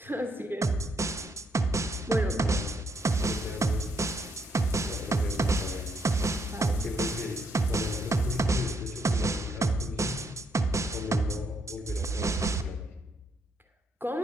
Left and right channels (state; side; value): normal; both; correlation 0.74